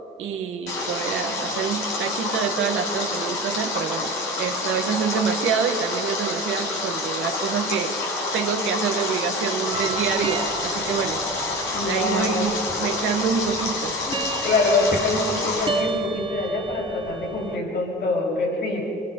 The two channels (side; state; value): both; normal; correlation 0.31